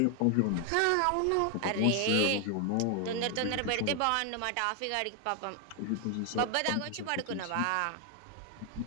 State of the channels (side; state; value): both; different; correlation 0.00